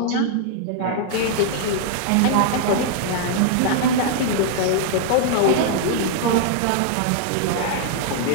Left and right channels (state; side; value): different; both; correlation -0.01